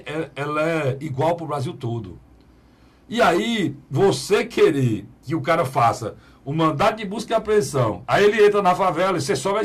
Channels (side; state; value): both; identical; correlation 1.00